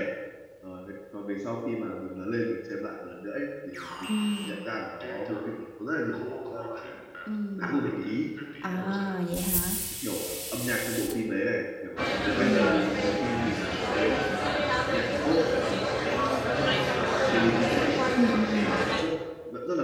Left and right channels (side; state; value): both; identical; correlation 1.00